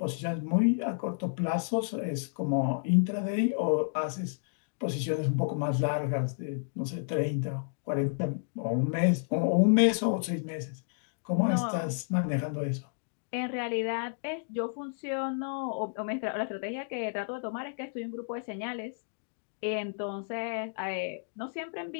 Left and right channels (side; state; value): right; silent; digital silence